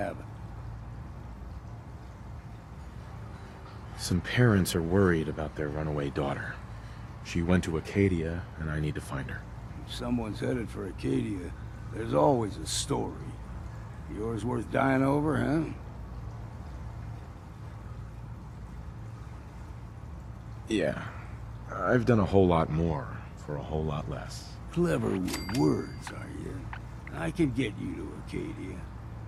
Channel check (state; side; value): identical; both; correlation 1.00